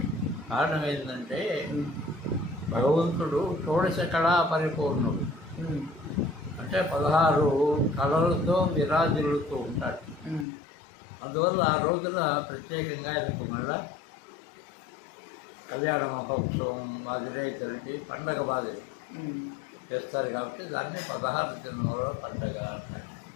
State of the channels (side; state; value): right; drops out; at 10.5 s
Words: కారణం ఏంటంటే భగవంతుడు షోడశ కళా పరిపూర్ణుడు, అంటే 16 కళలతో విరాజిల్లుతూ ఉంటాడు. అందువల్ల ఆ రోజున ప్రత్యేకంగా ఆయనకు మళ్ళా కళ్యాణ మహోత్సవం మాదిరే జరిగి పండగ మాదిరి చేస్తారు. కాబట్టి దాన్ని 16 దినాల పండగ అంటారు.